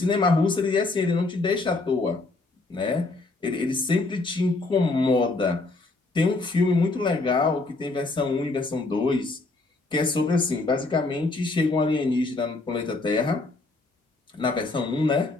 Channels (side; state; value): right; quieter; 3.3 dB